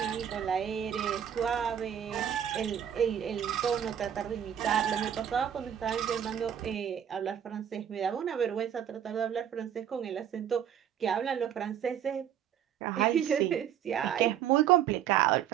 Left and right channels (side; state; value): left; quieter; 9.4 dB